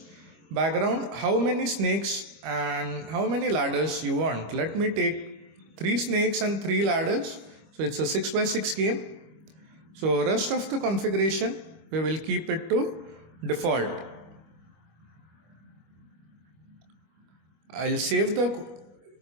Background, how many snakes and how many ladders you want. Let me take 3 snakes and 3 ladders. So it's a 6x6 game. So rest of the configuration we will keep it to default. I'll save the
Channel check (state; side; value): late; left; 25 ms